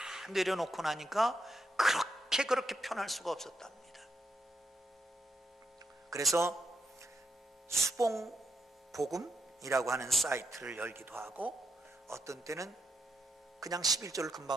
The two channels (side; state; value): both; normal; correlation 0.81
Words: 내려놓고 나니까 그렇게 편할 수가 없었답니다. 그래서 수봉복음이라고 하는 사이트를 열기도 하고, 어떤 때는 그냥 11조를